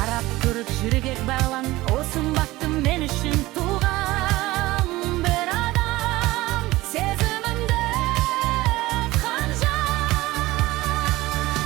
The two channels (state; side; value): quieter; left; 18.7 dB